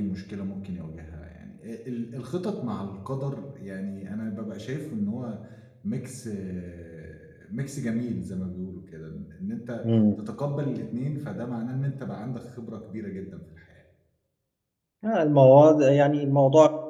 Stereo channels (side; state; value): both; identical; correlation 1.00